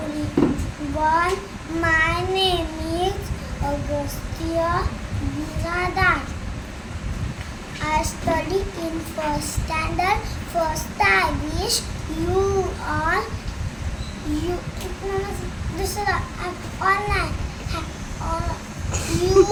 My name is Augustia Biradat. I study in first standard. First, I wish you all online. You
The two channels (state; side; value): identical; both; correlation 1.00